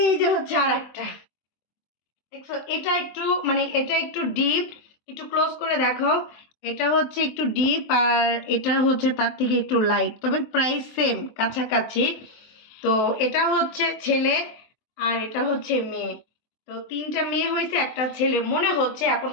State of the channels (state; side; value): late; right; 23 ms